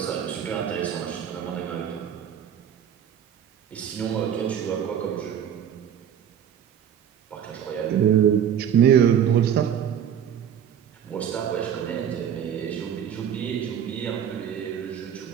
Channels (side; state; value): left; quieter; 9.1 dB